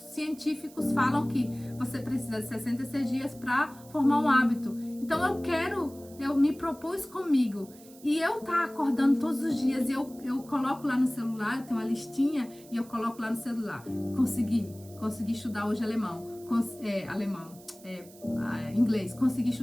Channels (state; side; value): noise; right; hiss, 22 dB below the sound